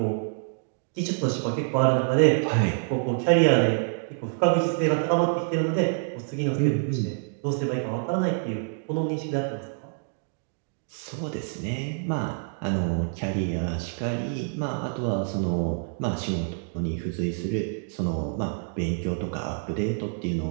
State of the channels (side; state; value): left; silent; 59 dB below the other